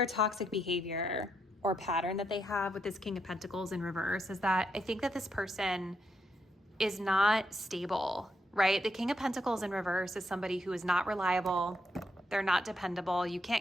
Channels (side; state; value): both; normal; correlation 0.79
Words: toxic behavior or pattern that they have with this King of Pentacles in reverse is that I think that this person is not stable, right? The King of Pentacles in reverse is somebody who is not reliable. They're not dependable. You